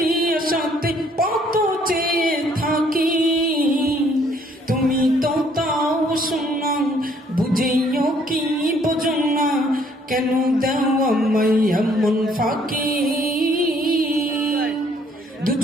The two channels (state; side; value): normal; both; correlation 0.63